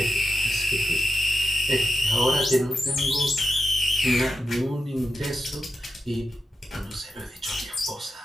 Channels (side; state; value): both; normal; correlation 0.89